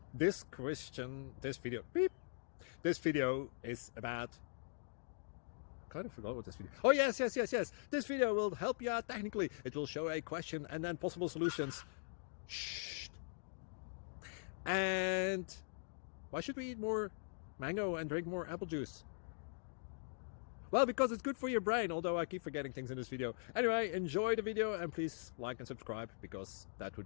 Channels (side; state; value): right; silent; digital silence